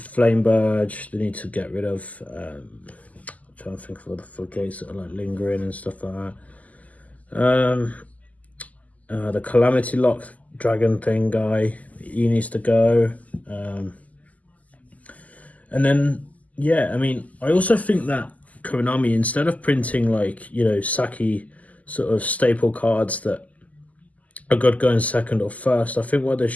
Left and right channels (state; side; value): late; right; 0.075 ms